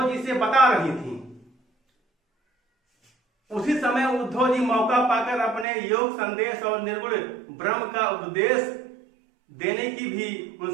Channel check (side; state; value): left; drops out; at 5.7 s